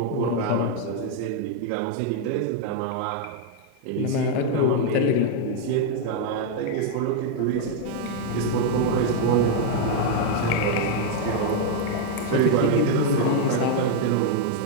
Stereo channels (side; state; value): both; different; correlation 0.00